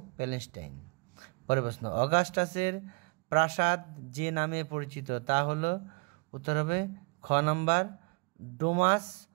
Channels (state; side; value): quieter; left; 31.8 dB